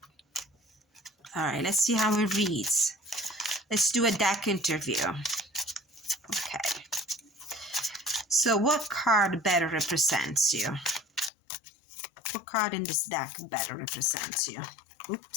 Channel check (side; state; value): right; drops out; at 11.3 s